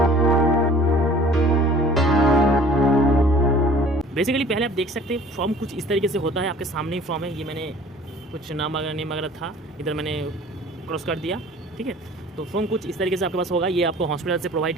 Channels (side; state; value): both; normal; correlation 0.49